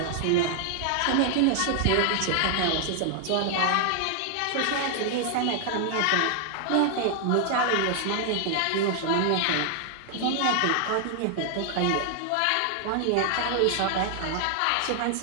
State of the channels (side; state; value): both; different; correlation 0.00